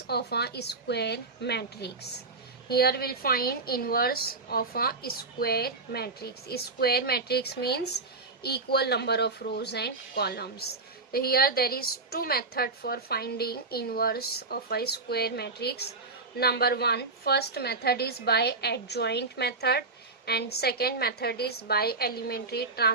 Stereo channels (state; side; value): quieter; left; 3.6 dB